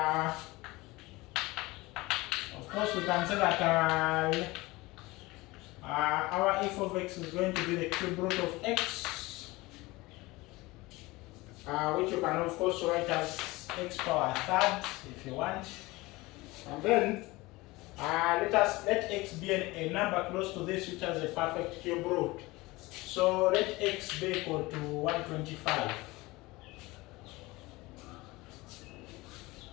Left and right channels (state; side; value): quieter; right; 21.5 dB